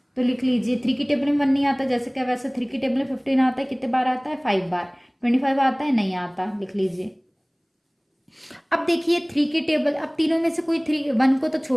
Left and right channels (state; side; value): identical; both; correlation 1.00